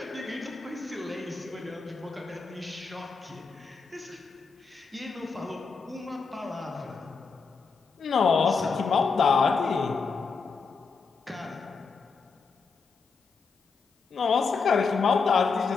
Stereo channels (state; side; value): quieter; right; 4.9 dB